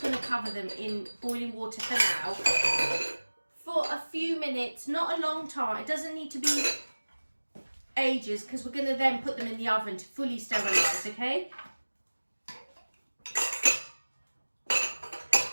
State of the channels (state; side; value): inverted; both; correlation -1.00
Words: cover them in boiling water for now. For a few minutes, not a long time. It doesn't need to be ages, because we're gonna then put them in the oven to fully sterilise, okay?